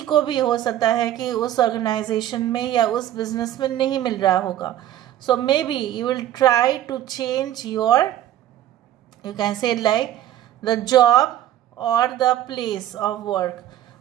को भी हो सकता है कि उस ऑर्गेनाइजेशन में या उस बिजनेस में नहीं मिल रहा होगा। So maybe you will try to change your, you can say like the job or the place of work।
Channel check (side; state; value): left; quieter; 12.5 dB